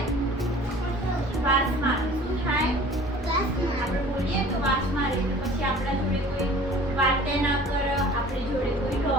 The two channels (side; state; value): both; normal; correlation 0.47